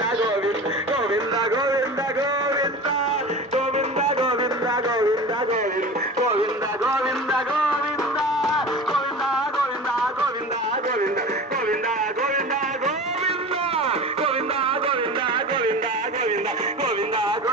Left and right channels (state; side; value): normal; both; correlation 0.34